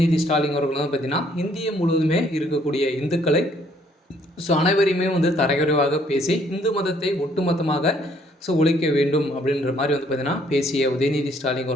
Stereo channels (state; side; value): normal; both; correlation 0.65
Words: ஸ்டாலின் அவர்கள் பார்த்தீங்கன்னா இந்திய முழுவதுமே இருக்கக்கூடிய இந்துக்களை அனைவரையுமே தரக்குறைவாக பேசி இந்து மதத்தை ஒட்டுமொத்தமாக ஒழிக்க வேண்டும் அப்படின்ற மாதிரி பார்த்தீங்கன்னா பேசிய உதயநிதி ஸ்டாலின்